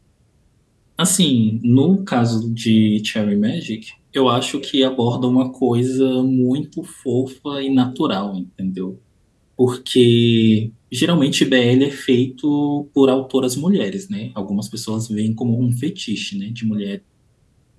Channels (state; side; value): identical; both; correlation 1.00